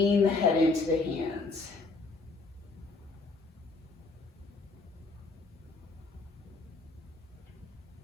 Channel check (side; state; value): right; quieter; 3.7 dB